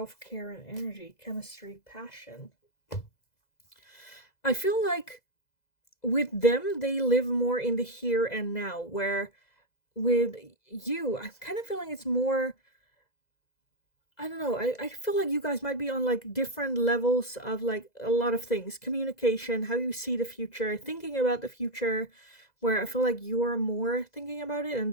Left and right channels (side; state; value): right; late; 2.0 ms